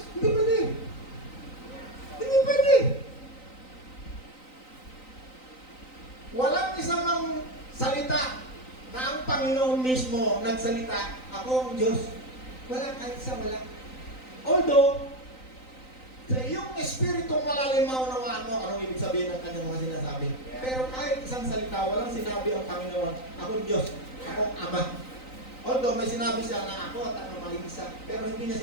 Hindi pwede. Hindi pwede. Walang isang salita na ang Panginoon mismo nagsalita, ako ang Diyos. Wala, kahit isa wala. Although, sa iyong espiritong malalim maunawaan mo, anong ibig sabihin ng kanyang mga sinasabi. Pero kahit isang salita, walang sinabi ang Panginoon, ako ang Diyos, ako ang Ama. Although may sinabi siya na ako at ang mag-iisa, pero hindi niya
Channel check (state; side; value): late; right; 3.9 ms